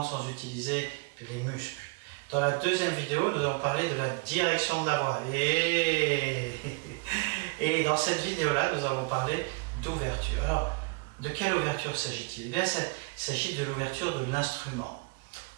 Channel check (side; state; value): left; quieter; 30.7 dB